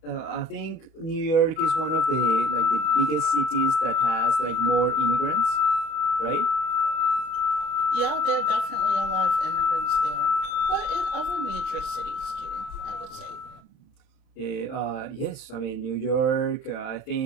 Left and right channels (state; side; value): late; right; 31 ms